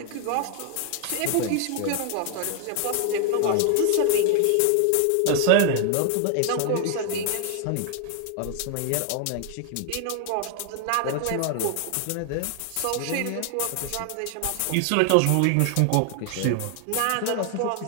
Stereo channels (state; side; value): different; both; correlation 0.00